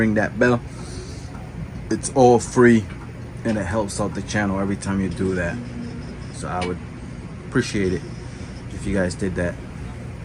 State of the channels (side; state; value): both; identical; correlation 1.00